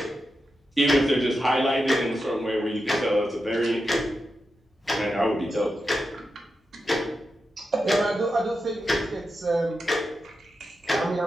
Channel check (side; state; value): both; normal; correlation 0.89